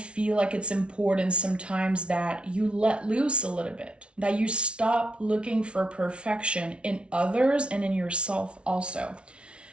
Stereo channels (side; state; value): left; late; 0.059 ms